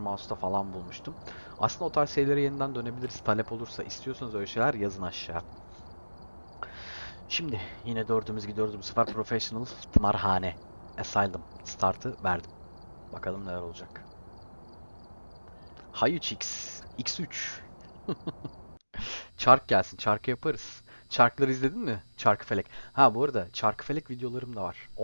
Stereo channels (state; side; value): inverted; both; correlation -1.00